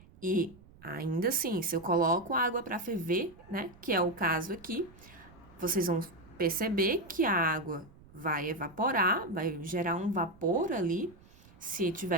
E ainda assim, se eu coloco água para ferver, né, que é o caso aqui, vocês vão perceber que a água vai evaporar, vai gerar um vapor ali, se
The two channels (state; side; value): noise; right; rumble, 24 dB below the sound